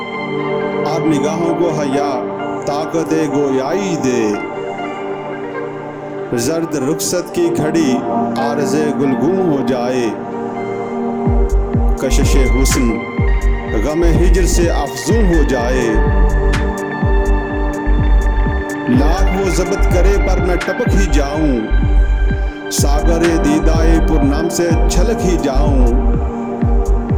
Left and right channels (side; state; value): both; identical; correlation 1.00